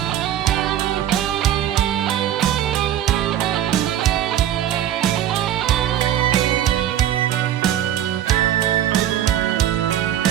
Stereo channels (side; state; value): left; quieter; 11.2 dB